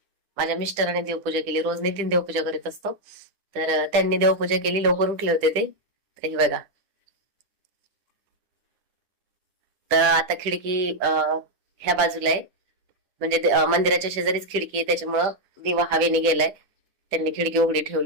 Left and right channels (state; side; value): late; left; 10 ms